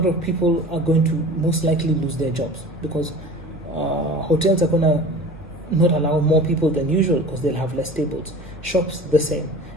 of people are going to most likely lose their jobs because hotels are going to not allow more people than usual because they'll have less tables. Shops, the same.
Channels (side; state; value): both; normal; correlation 0.40